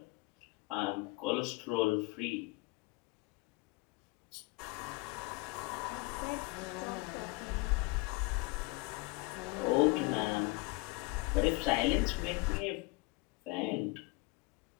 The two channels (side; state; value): right; quieter; 25.0 dB